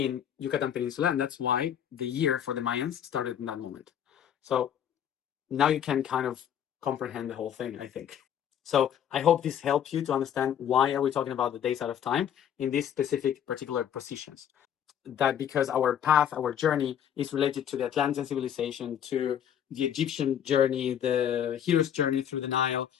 Yucatan Peninsula, and that's why the year for the Mayans started in that moment. So now you can kind of comprehend the whole thing, I think. So I hope this helps you to understand why are we talking about the days out of time in these specific particular positions. That because our path, our journey is related to the Atlantean civilization, to the Egyptian journey, the hero's journey through the Nile,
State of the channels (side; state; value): right; quieter; 9.4 dB